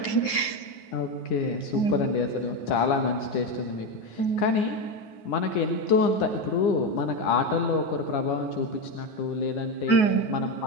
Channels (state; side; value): late; right; 9.5 ms